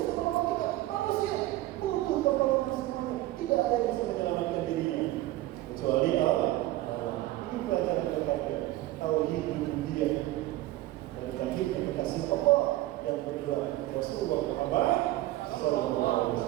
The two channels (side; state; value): left; quieter; 16.6 dB